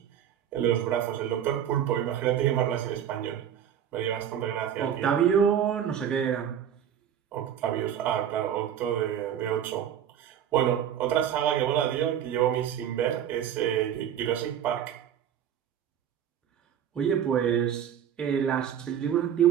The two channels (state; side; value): quieter; left; 9.5 dB